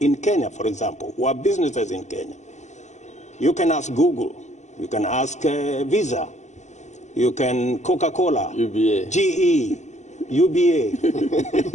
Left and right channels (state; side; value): late; right; 0.34 ms